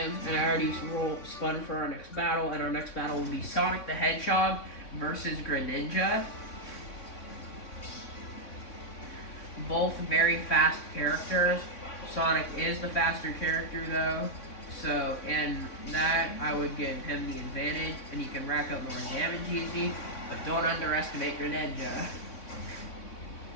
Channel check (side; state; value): right; late; 3.6 ms